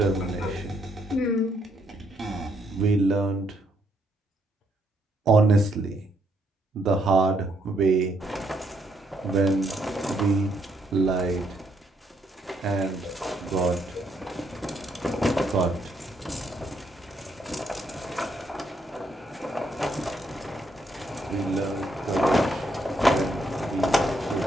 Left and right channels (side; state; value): both; normal; correlation 0.74